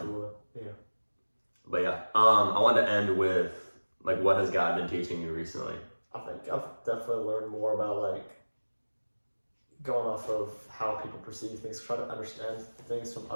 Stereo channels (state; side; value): inverted; both; correlation -1.00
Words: Yeah. But yeah, I wanted to end with like what has God been teaching you recently? I think I've definitely learned more about like going off of how people perceive things, try to understand things from